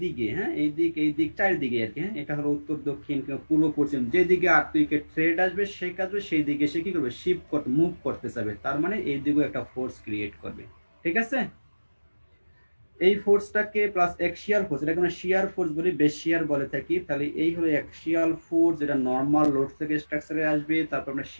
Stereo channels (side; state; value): both; inverted; correlation -1.00